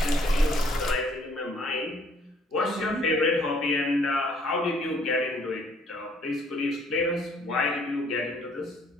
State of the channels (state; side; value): normal; both; correlation 0.63